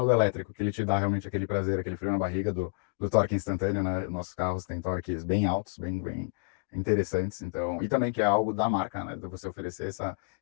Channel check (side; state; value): right; silent; digital silence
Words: do elétrico, que ele te dá realmente aquele prazer, aquele frio na barriga do torque instantâneo, né? Nossos carros têm torques bem altos, bem interessantes, então, e também que é algo da marca, né? De você oferecer